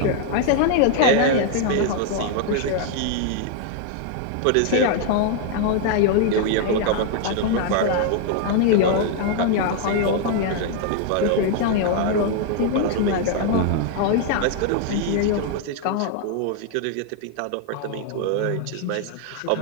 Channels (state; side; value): different; both; correlation 0.00